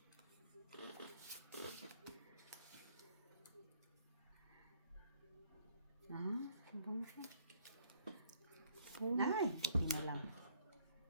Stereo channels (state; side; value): inverted; both; correlation -0.63